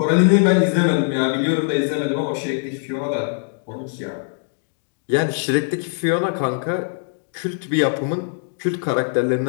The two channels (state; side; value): silent; right; digital silence